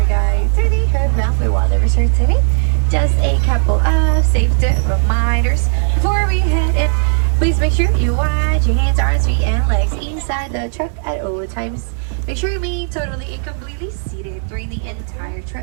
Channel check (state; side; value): silent; left; digital silence